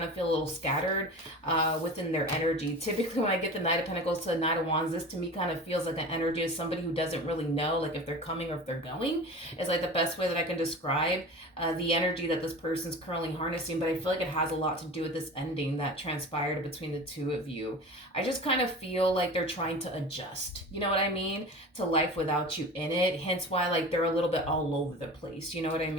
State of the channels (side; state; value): both; normal; correlation 0.35